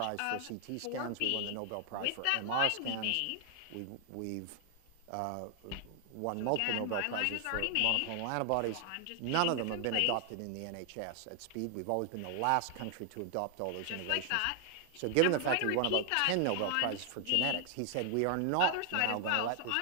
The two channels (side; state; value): both; different; correlation 0.00